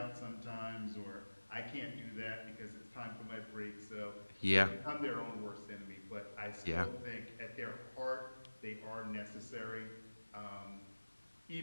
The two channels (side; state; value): both; inverted; correlation -1.00